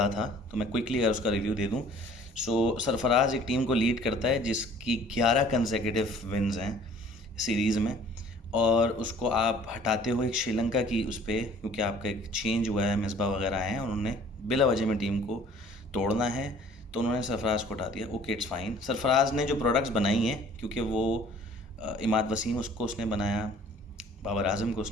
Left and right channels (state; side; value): normal; both; correlation 0.52